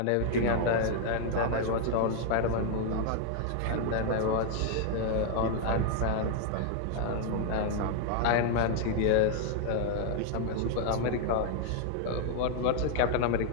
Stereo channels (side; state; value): both; different; correlation 0.00